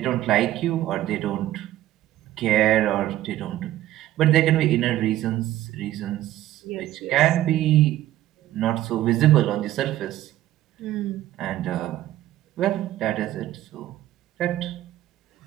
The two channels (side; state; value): left; quieter; 14.0 dB